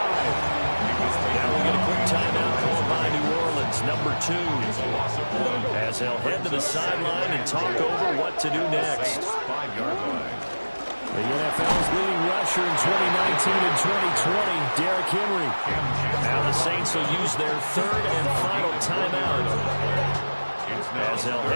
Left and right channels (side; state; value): both; inverted; correlation -1.00